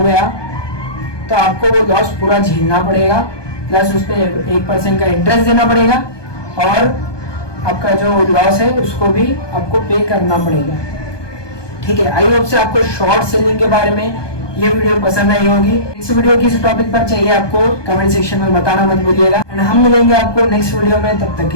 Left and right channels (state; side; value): late; right; 1.2 ms